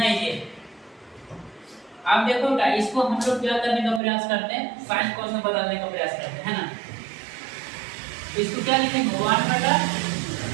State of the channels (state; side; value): drops out; left; at 4.0 s